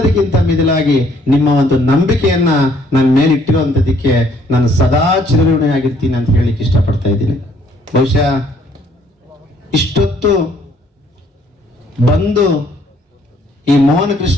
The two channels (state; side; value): normal; both; correlation 0.64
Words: ಮಿಗಿಲಾಗಿ ನಿಮ್ಮ ಒಂದು ನಂಬಿಕೆಯನ್ನ ನನ್ನ ಮೇಲೆ ಇಟ್ಟಿರುವಂತದಕ್ಕೆ ನಾನು ಸದಾ ಚಿರಋಣಿಯಾಗಿರ್ತೀನಿ ಅಂತ ಹೇಳಿಕ್ಕೆ ಇಷ್ಟಪಡ್ತಾ ಇದ್ದೀನಿ. ಬಹುಶಃ ಇಷ್ಟೊತ್ತು ಬಂದು ಈ ಮೋಹನ